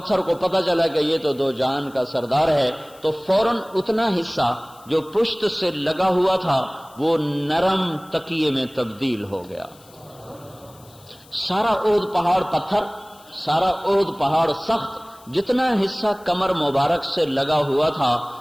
کو پتہ چلا کہ یہ تو دو جہان کا سردار ہے، تو فوراً اتنا حصہ جو پشت سے لگا ہوا تھا وہ نرم تکیے میں تبدیل ہو گیا۔ سارا اود پہاڑ پتھر، سارا اود پہاڑ سخت، جتنا حصہ کمر مبارک سے لگا ہوا تھا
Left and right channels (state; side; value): noise; left; hiss, 26 dB below the sound